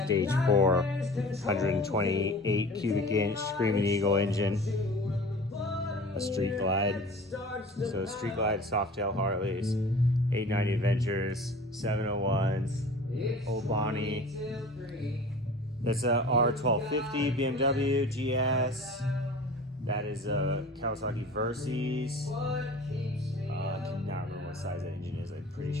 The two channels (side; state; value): both; normal; correlation 0.42